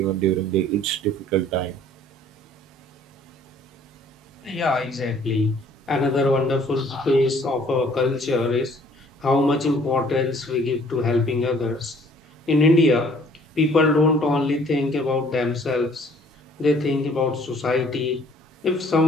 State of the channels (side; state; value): both; normal; correlation 0.57